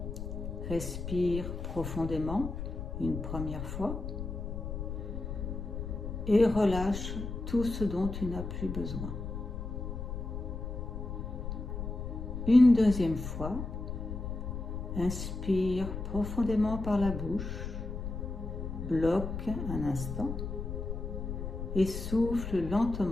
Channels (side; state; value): left; noise; rumble, 5 dB below the sound